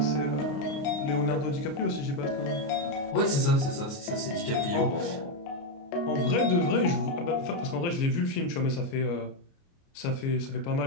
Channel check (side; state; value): right; late; 29 ms